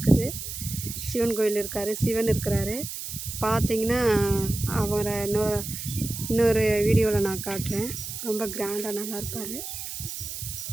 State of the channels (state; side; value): noise; right; hiss, 7 dB below the sound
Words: சிவன் கோயில் இருக்கார், சிவன் இருக்கிறாரு. பார்த்தீங்கன்னா அவரை இன்னொரு வீடியோவில் நான் காட்டுறேன். ரொம்ப கிராண்டாக நல்லா இருப்பார்.